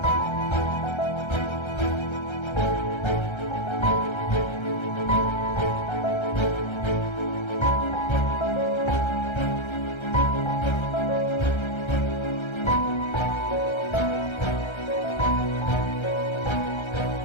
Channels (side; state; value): right; late; 1.3 ms